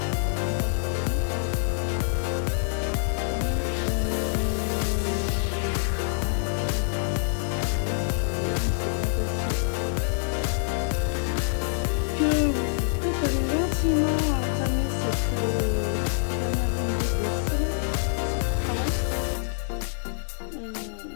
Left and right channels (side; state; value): right; silent; digital silence